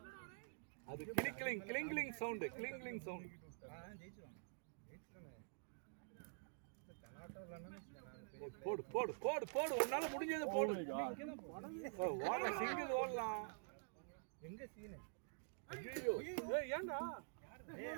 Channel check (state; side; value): silent; left; digital silence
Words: அது கிளிங்கிங் சவுண்ட் ஜெயிச்சுவாங்க. போடு போடு போடு போடு உன்னால முடிஞ்சது போடு. ஓட சிங்கிள் ஓடலாம். எங்க சீன் ஐயோ ஏய் ஏண்டா